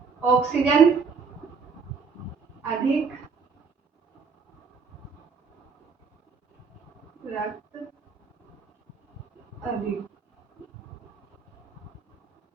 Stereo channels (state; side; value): quieter; left; 5.3 dB